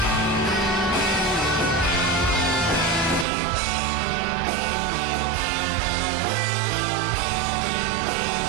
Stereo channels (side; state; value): left; drops out; at 3.2 s